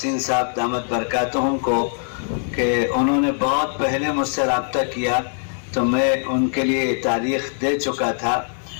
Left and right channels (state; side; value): silent; right; 61 dB below the other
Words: صاحب دامت برکاتہم کو کہ انہوں نے بہت پہلے مجھ سے رابطہ کیا تو میں ان کے لیے تاریخ دے چکا تھا،